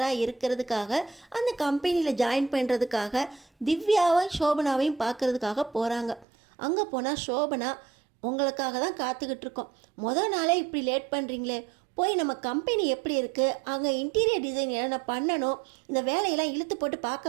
இருக்கிறதுக்காக அந்த கம்பெனியில் ஜாயின் பண்ணுறதுக்காக திவ்யாவையும் சோபனாவையும் பார்க்குறதுக்காக போகிறாங்க. அங்கே போனால் சோபனா, உங்களுக்காக தான் காத்துக்கிட்டு இருக்கோம், மொதல் நாளே இப்படி லேட் பண்ணுறீங்களே, போய் நம்ம கம்பெனி எப்படி இருக்குது, அங்கே இன்டீரியர் டிசைன் என்னென்ன பண்ணணும், இந்த வேலையெல்லாம் இழுத்து போட்டு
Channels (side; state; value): left; drops out; at 6.2 s